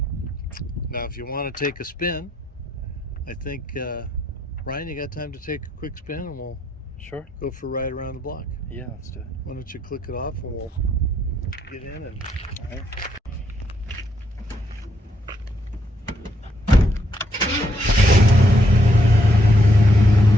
Now, if you want to take a spin, I think, Ryan, you got time to take a quick spin and we'll go for a ride around the block? Yeah, let's do it. Why don't you click it off and we'll get in and... All right.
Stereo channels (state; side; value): normal; both; correlation 0.76